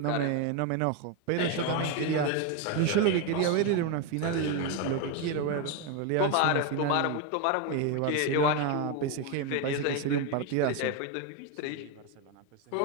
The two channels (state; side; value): different; both; correlation 0.02